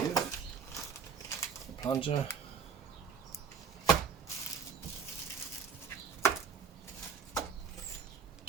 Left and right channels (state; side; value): quieter; left; 6.5 dB